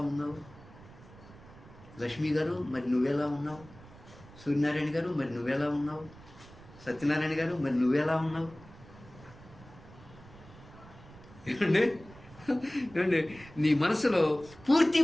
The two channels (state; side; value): noise; right; rumble, 20 dB below the sound